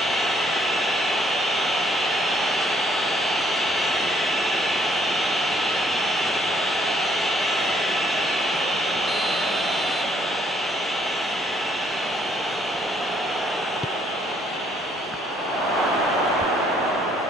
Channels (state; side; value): normal; both; correlation 0.67